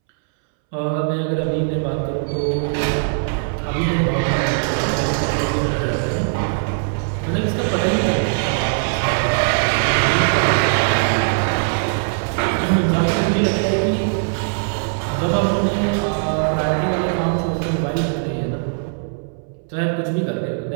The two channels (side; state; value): left; silent; 66 dB below the other